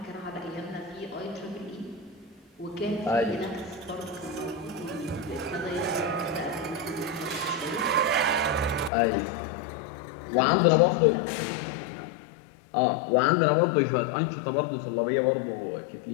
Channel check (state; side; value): drops out; right; at 8.9 s